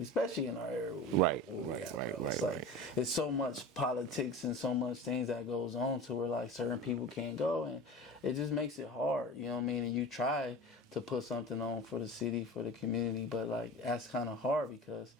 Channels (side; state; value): both; normal; correlation 0.33